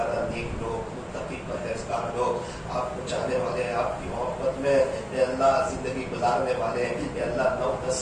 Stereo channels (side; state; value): both; identical; correlation 1.00